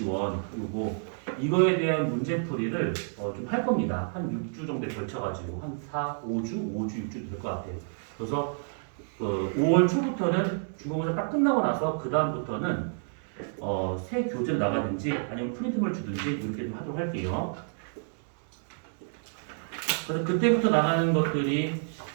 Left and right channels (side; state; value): left; silent; digital silence